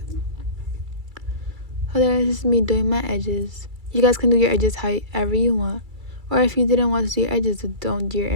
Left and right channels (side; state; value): left; late; 2.3 ms